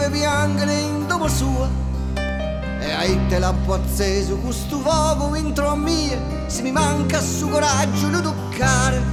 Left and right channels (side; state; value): both; identical; correlation 1.00